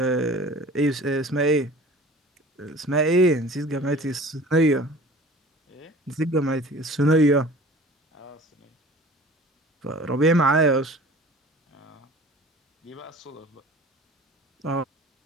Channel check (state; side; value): normal; both; correlation 0.44